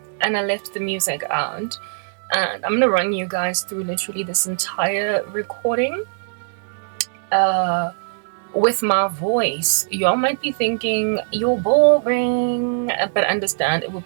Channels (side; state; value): left; silent; digital silence